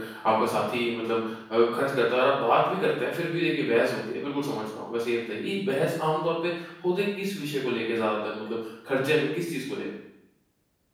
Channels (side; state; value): both; identical; correlation 1.00